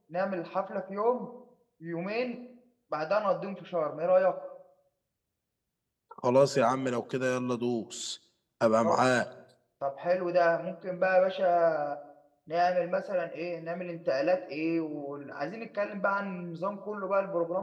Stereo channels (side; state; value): both; identical; correlation 1.00